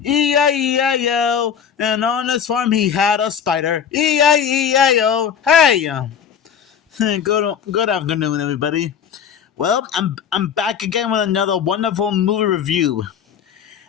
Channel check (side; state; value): right; quieter; 7.9 dB